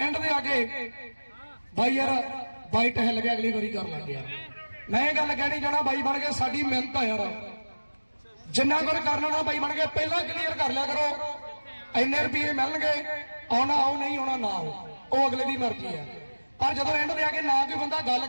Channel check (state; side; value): inverted; both; correlation -1.00